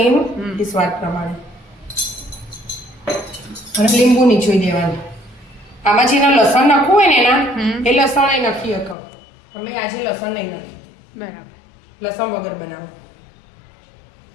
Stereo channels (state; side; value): drops out; right; at 9.0 s